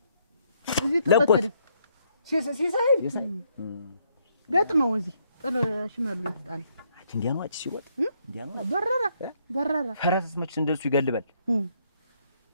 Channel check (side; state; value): both; inverted; correlation -0.72